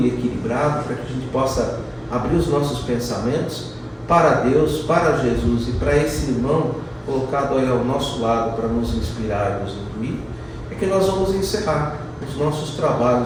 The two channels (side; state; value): both; identical; correlation 1.00